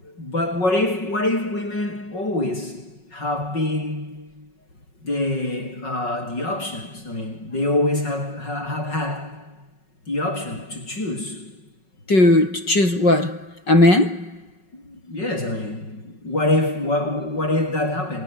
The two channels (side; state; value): right; late; 5.4 ms